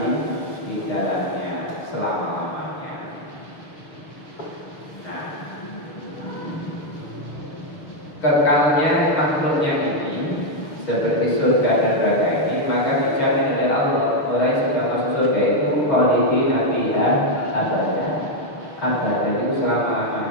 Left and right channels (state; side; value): late; right; 6.6 ms